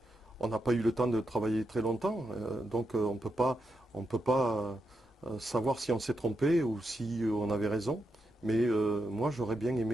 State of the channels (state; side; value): normal; both; correlation 0.85